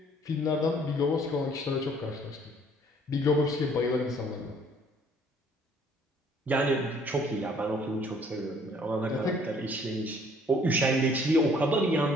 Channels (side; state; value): both; normal; correlation 0.59